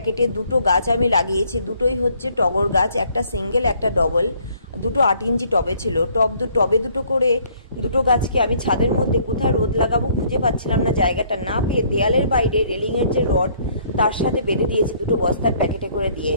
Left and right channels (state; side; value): inverted; both; correlation -0.63